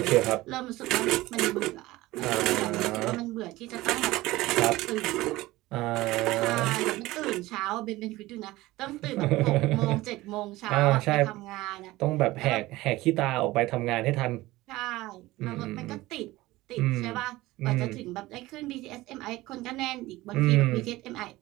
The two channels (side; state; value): left; quieter; 18.5 dB